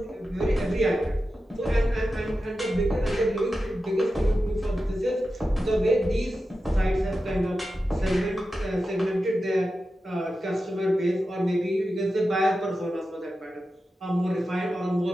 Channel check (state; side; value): normal; both; correlation 0.92